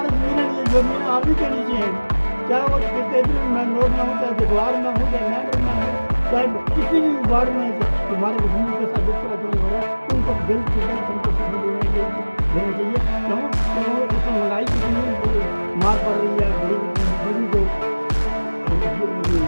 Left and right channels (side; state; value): both; inverted; correlation -1.00